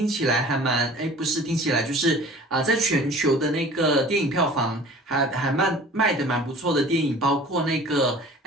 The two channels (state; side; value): normal; both; correlation 0.45